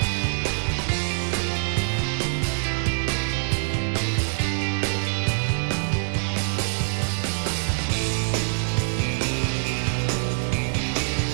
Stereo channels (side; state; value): left; silent; 62 dB below the other